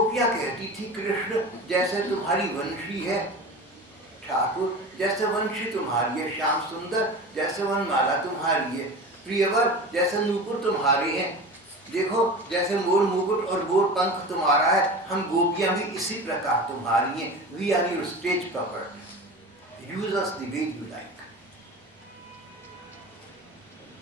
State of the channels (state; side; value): normal; both; correlation 0.32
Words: कहती थी, कृष्ण जैसे तुम्हारी वंशी है, ठाकुर जैसे वंशी तुम्हारी है, श्याम सुंदर जैसे वनमाला तुम्हारी है, प्रियवर जैसे नूपुर तुम्हारे हैं, देखो जैसे मोर मुकुट और मोर पंख तुम्हारा है, हम गोपियां भी इसी प्रकार तुम्हारी हैं। We are your stage property, use us the way you like.